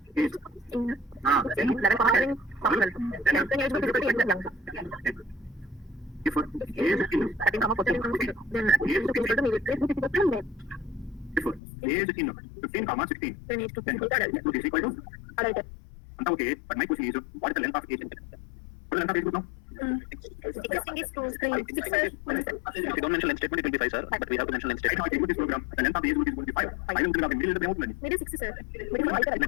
Age. In 11 comma 11 comma 12. Then age group is equal to young. A is in 13, 14, then A is equal to maybe age group is equal to male. If A is in 15, 16, Then age group then is equal to adult. age group is equal to Adult. okay. But my question is, what is the length of age? What is the length of age group now? 16 is 2, 3, 6, 7, If you don't mention length statement, it will be 5, sir. But we have to mention length Right now, statement. I take this program. The length of the age group is going to be 5. I will bring up in middle of the remote learning. maybe 6, sir. Maybe not Middle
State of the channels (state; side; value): drops out; right; at 11.6 s